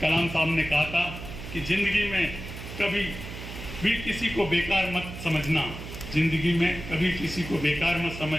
कलाम साहब ने कहा था कि जिंदगी में कभी भी किसी को बेकार मत समझना, जिंदगी में कभी किसी को बेकार मत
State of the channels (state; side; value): noise; right; hum, 10 dB below the sound